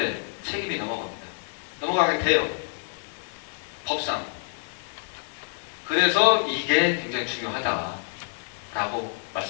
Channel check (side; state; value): right; silent; 60 dB below the other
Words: 책임이 넘어가게 돼요. 법상. 그래서 이게 굉장히 중요하다라고